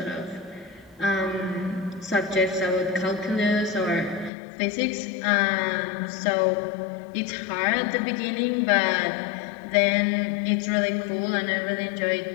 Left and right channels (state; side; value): drops out; right; at 4.3 s